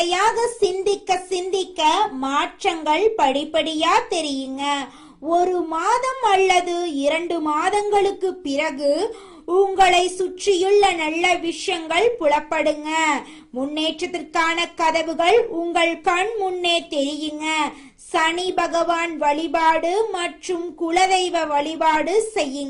சிந்திக்க சிந்திக்க மாற்றங்கள் படிப்படியா தெரியுங்க. 1 மாதம் அல்லது 2 மாதங்களுக்கு பிறகு உங்களை சுற்றியுள்ள நல்ல விஷயங்கள் புலப்படுங்க. முன்னேற்றத்திற்கான கதவுகள் உங்கள் கண் முன்னே தெரியுங்க. சனி பகவான் வழிபாடு மற்றும் குலதெய்வ வழிபாடு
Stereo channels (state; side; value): identical; both; correlation 1.00